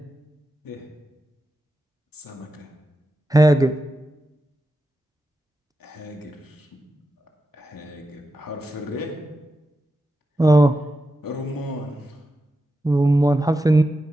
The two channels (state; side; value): normal; both; correlation 0.90